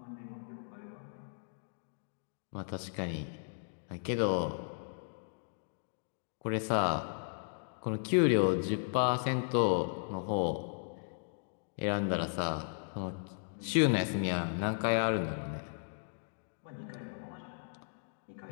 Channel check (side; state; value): right; silent; digital silence